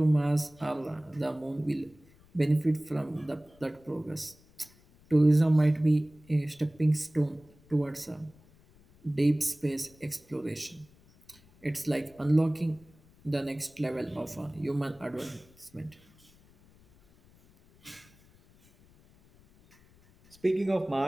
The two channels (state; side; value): noise; left; rumble, 28 dB below the sound